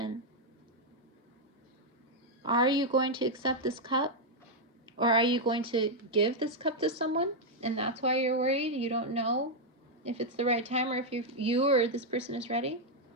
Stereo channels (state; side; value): normal; both; correlation -0.01